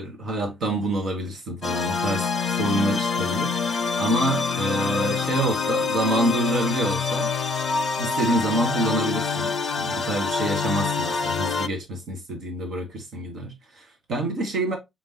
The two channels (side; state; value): both; normal; correlation 0.60